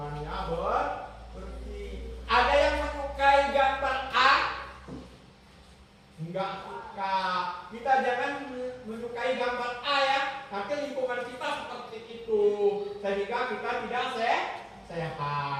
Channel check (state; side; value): identical; both; correlation 1.00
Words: bersih. Ada yang menyukai gambar A? Enggak suka. Kita jangan menyukai gambar A ya. Nanti lingkungan kita seperti itu, sehingga kita tidak